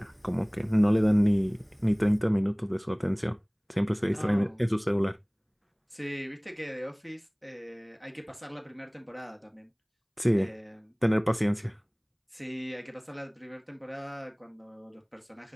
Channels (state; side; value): identical; both; correlation 1.00